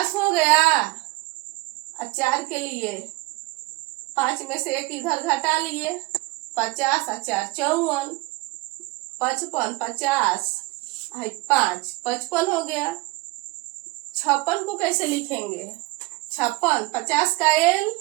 हो गया और 4 के लिए 5 में से 1 इधर घटा लिए, 50 और 4 54। 55 50 5 55 हो गया। 56 को कैसे लिखेंगे? 56 50 का एल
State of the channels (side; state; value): left; quieter; 23.2 dB